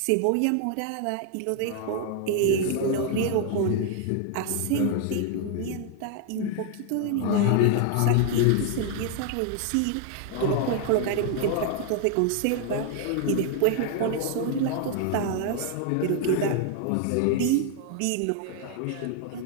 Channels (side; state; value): both; different; correlation 0.00